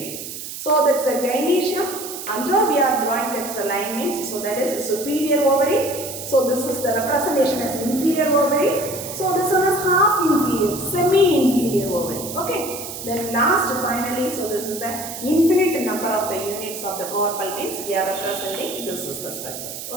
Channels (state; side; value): noise; right; hiss, 9 dB below the sound